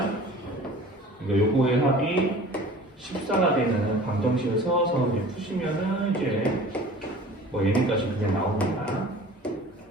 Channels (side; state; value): both; normal; correlation 0.43